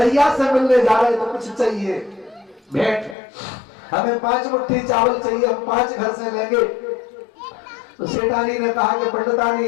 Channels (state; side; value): drops out; right; at 3.2 s